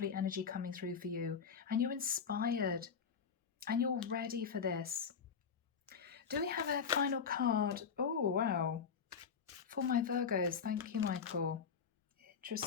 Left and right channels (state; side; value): quieter; right; 6.4 dB